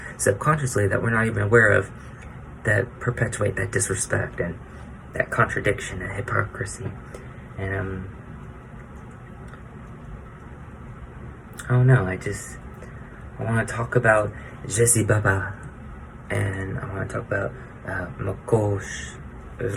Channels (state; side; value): identical; both; correlation 1.00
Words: subconsciously that we're not even aware of, that perpetuate that disrespect and that contradiction and hypocrisy. And I don't know, I want to talk about Jesse Baba, and I want to talk about Makosh,